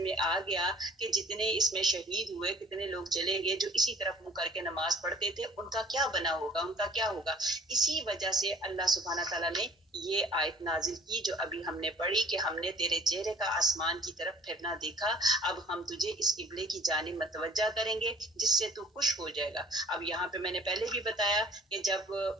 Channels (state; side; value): normal; both; correlation 0.52